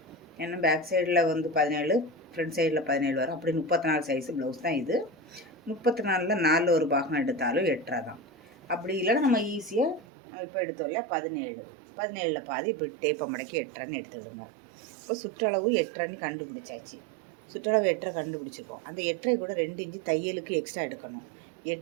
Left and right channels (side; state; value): left; drops out; at 10.1 s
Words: ஏன்னா பேக் சைடில் வந்து 17, ஃப்ரண்ட் சைடில் 17 வரும். அப்படி 34 சைஸு ப்ளவுஸ் தான் இது. 34ல் 4 ஒரு பாகம் எடுத்தாலும் 8.5 தான். அப்படி இல்லைன்னா நம்ம ஈஸியாக நம்ம இப்போ எடுத்தோம்ல 17ல் பாதி இப்படி டேப்பை மடக்கி 8.5ன்னு எடுத்துடுங்க. இப்போ சுற்றளவு 8.5ன்னு கண்டுபிடிச்சாச்சு. சுற்றளவு 8.5 கண்டுபிடிச்சிருக்கோம். அந்த 8.5 கூட 2 இன்ச்சு தையலுக்கு எக்ஸ்ட்ரா எடுக்கணும்.